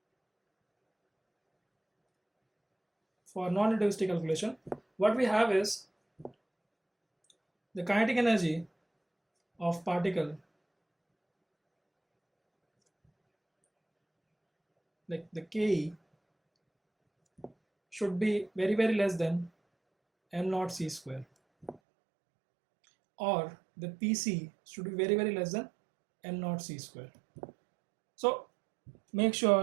what we have is the kinetic energy of particle, like the Ke, should be very, very less than m naught c square, or the PC should be very, very less than m naught c square. So make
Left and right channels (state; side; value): drops out; left; at 21.8 s